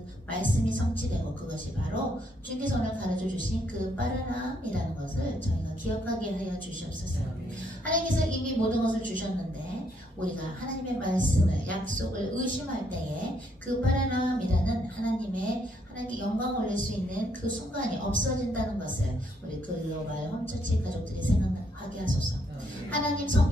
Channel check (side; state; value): both; normal; correlation 0.72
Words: 말씀이 성취되고 그것이 바로 주님께서 오늘 가르쳐 주신 그 빠르남이라는 것을 저희가 기억하게 하여 주시옵소서. 하나님께서 이미 모든 것을 주셨는데 우리가 하나님의 말씀을 약속을 의심할 때에 그 빠르남이라는 하나님께 영광을 올릴 수 있는 그 순간이 없어진다는 것을 우리 글로벌 홈처치 가족들이 생각하게 하소서. 하나님